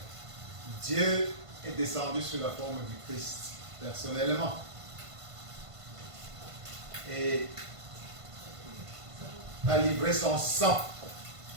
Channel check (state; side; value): late; left; 1.5 ms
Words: Dieu est descendu sous la forme du Christ, personnellement. Et a livré son sang.